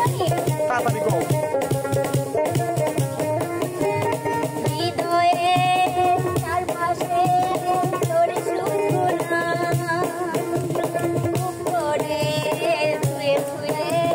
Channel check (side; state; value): both; identical; correlation 1.00